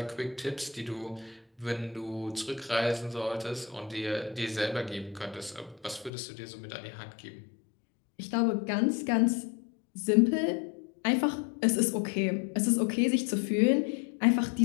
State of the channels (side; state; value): right; drops out; at 6.1 s